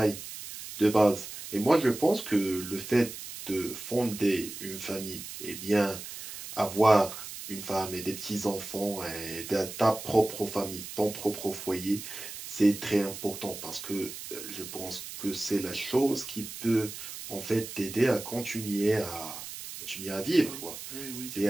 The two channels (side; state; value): right; noise; hiss, 10 dB below the sound